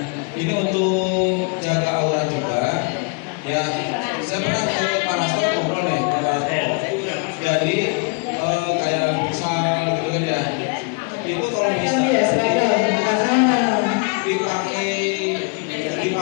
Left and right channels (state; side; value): quieter; right; 34.5 dB